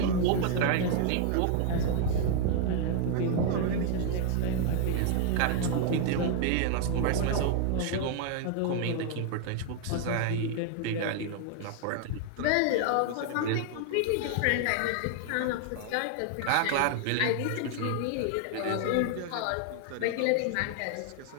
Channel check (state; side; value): different; both; correlation 0.00